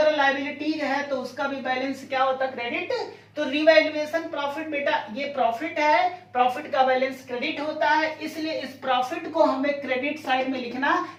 लायबिलिटीज है तो उसका भी बैलेंस क्या होता है, क्रेडिट। तो रिवैल्यूएशन प्रॉफिट बेटा ये प्रॉफिट है, प्रॉफिट का बैलेंस क्रेडिट होता है, इसलिए इस प्रॉफिट को हमें क्रेडिट साइड में लिखना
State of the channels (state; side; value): identical; both; correlation 1.00